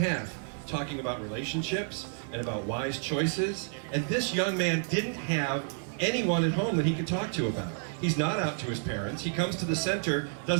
talking about relationships and about wise choices. And this young man didn't have anyone at home that he could talk to about. He's not out to his parents. He comes to the center,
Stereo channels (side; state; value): left; silent; 58 dB below the other